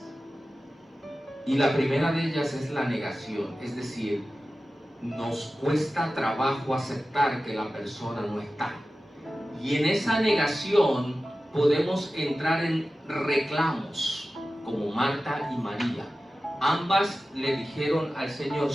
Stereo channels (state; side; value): normal; both; correlation 0.95